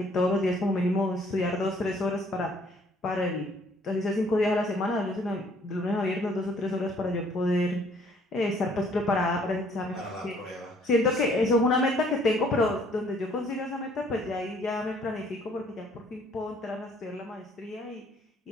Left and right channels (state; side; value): normal; both; correlation 0.61